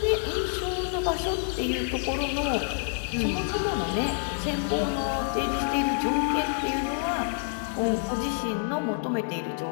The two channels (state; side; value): silent; right; 60 dB below the other